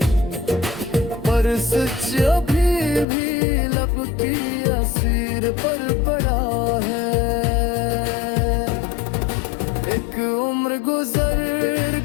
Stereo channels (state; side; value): drops out; right; at 3.1 s